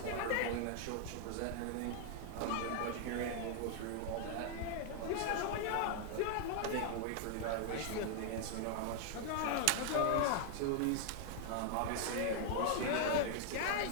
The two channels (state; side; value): different; both; correlation 0.00